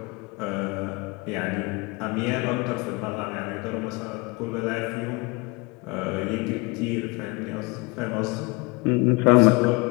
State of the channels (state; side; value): quieter; right; 26.8 dB